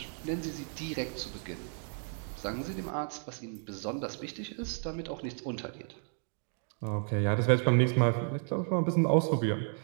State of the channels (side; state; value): left; silent; 56 dB below the other